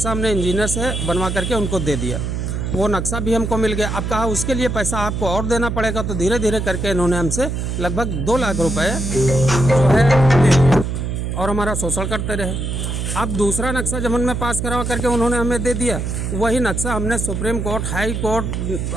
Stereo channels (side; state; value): right; noise; hum, 3 dB below the sound